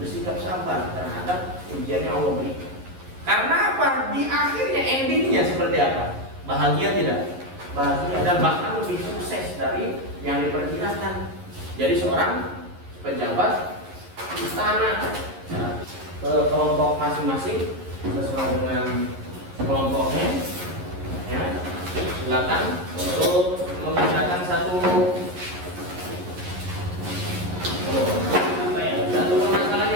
sabar terhadap ujian yang Allah berikan. Karena di akhirnya endingnya seperti apa? Bahagia tidak? Bahagia, dan bahkan lebih sukses dari yang diperkirakan. Jadi seorang pejabat istana ke kelompok masing-masing sesuai dengan kelompoknya ya. Silakan untuk mengerjakan satu permasalahan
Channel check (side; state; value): left; late; 11 ms